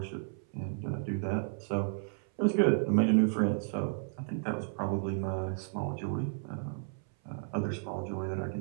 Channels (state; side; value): silent; left; 56 dB below the other